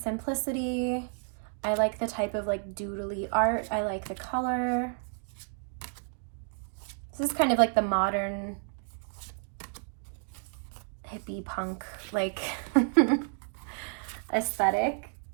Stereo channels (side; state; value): left; silent; 57 dB below the other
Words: I like the type of like doodly art. I like the color. This is kind of like the modern hippie punk like aesthetic.